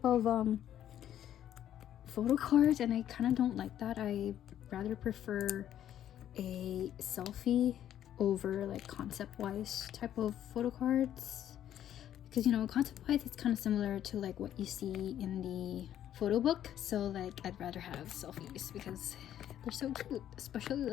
of photo cards, and I kind of don't like that. I rather prefer a selfie over like concept wise type of photo cards, because you know, concept-wise it's kind of similar to like what you see in the photo book. So like I'd rather have selfies because they're so cute, especially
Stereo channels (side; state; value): right; quieter; 11.0 dB